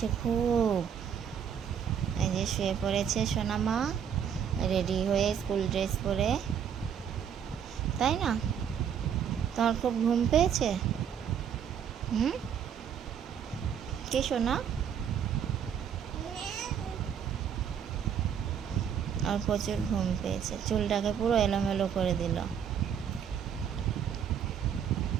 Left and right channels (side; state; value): left; quieter; 8.2 dB